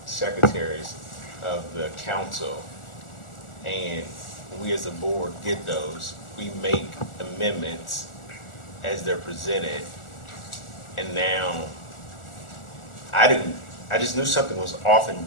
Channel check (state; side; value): late; right; 1.4 ms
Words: secretaries of the council, and we as a board get those. We make amendments as they're presented, and now, I just knew something was off and